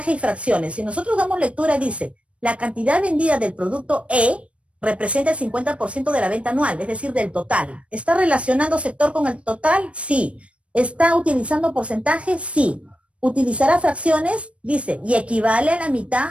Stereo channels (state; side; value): late; left; 0.062 ms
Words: y fracciones. Si nosotros damos lectura, dice, la cantidad vendida del producto E representa el 50% de la venta anual, es decir, del total. ¿Está relacionando sector con el total? Sí. ¿Está utilizando porcentaje? Sí. ¿Utilizará fracciones? Dice, y equivale a la